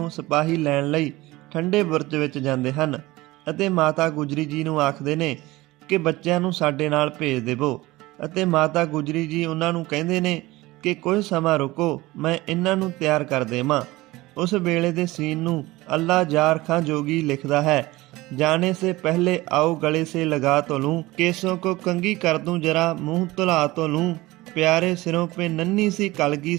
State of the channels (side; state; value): left; quieter; 19.6 dB